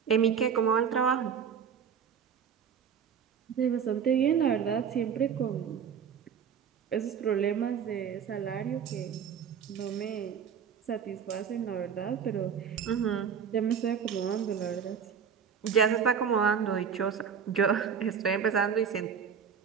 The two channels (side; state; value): left; quieter; 7.3 dB